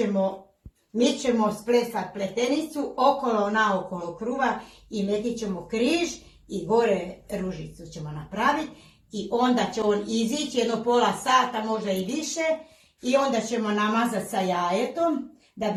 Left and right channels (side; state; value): both; identical; correlation 1.00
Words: mi ćemo splesati pletenicu okolo naokolo kruha i metit ćemo križ i gore ružicu ćemo napraviti i onda će on izići jedno pola sata, možda i više, i onda ćemo namazati sa jajetom da